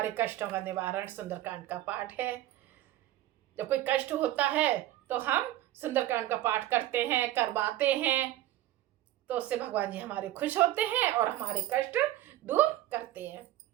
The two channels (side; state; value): left; quieter; 14.5 dB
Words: कष्टों का निवारण सुंदरकांड का पाठ है। जब कोई कष्ट होता है तो हम सुंदरकांड का पाठ करते हैं, करवाते हैं, तो उससे भगवान जी हमारे खुश होते हैं और हमारे कष्ट दूर करते हैं।